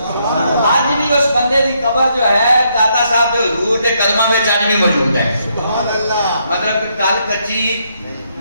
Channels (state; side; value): inverted; both; correlation -0.75